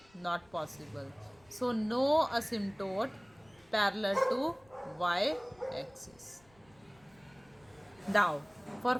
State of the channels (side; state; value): left; noise; rumble, 30 dB below the sound